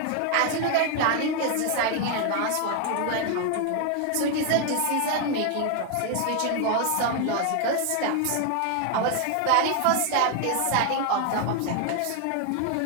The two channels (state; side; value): different; both; correlation 0.01